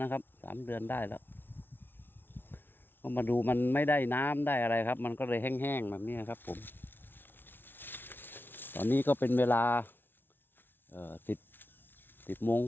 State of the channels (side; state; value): right; late; 0.10 ms